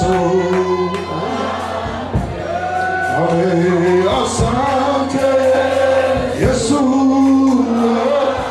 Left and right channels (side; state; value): both; identical; correlation 1.00